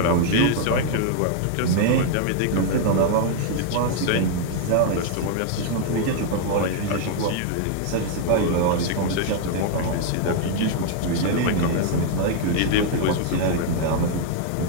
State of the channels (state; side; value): different; both; correlation 0.00